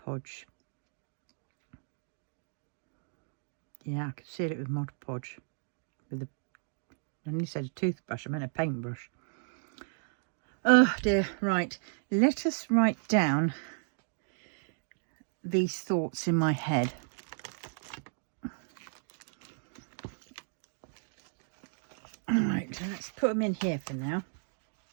Yeah, I could seal it with Mod Podge. With I nearly said a toothbrush, I meant a paintbrush. Oh dear, right. Let us write down these thoughts in my head. Right, let's put them in here for now.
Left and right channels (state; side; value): silent; left; digital silence